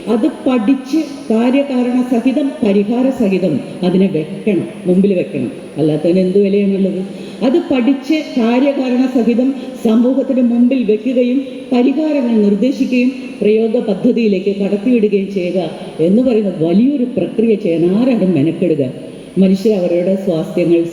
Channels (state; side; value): identical; both; correlation 1.00